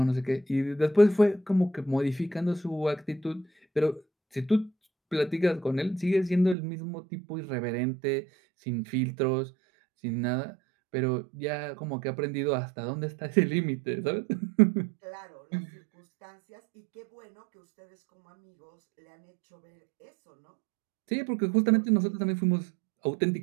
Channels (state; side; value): drops out; left; at 6.6 s